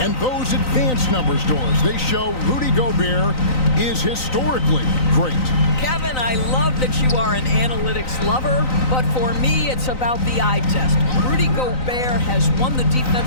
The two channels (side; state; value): right; late; 3.9 ms